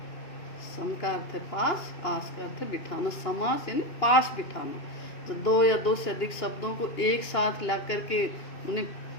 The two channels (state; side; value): late; right; 2.8 ms